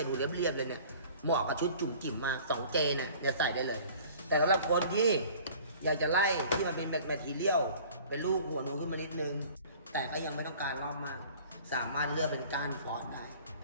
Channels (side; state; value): both; inverted; correlation -0.48